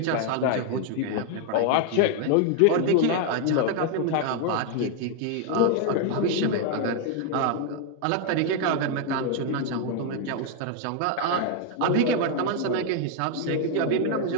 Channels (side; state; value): both; different; correlation 0.00